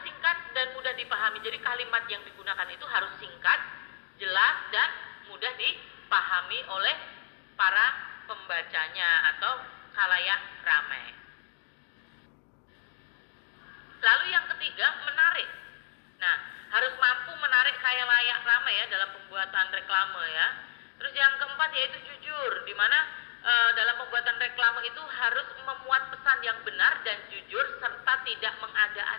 singkat, dan mudah dipahami. Jadi kalimat yang digunakan itu harus singkat, jelas, dan mudah dipahami oleh para pembacanya atau khalayak ramai. Lalu yang ketiga, menarik. Nah, harus mampu menarik khalayak ramai ya dalam pembuatan reklame ya. Terus yang keempat yaitu jujur, di mana dalam pembuatan reklame itu harus memuat pesan yang benar dan jujur serta tidak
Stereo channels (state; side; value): silent; right; digital silence